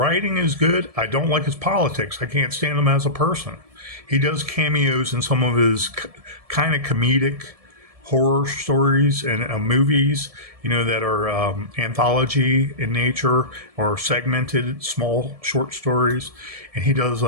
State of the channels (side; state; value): left; late; 1.7 ms